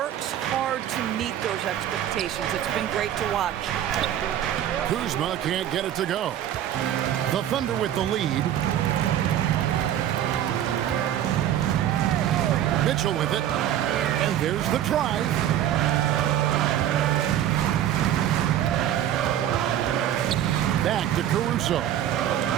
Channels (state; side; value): quieter; left; 11.2 dB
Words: hard to meet those expectations. It's been great to watch. Kuzma can't get it to go. The Thunder with the lead. Mitchell with it. And there's the try. Back to Caruso.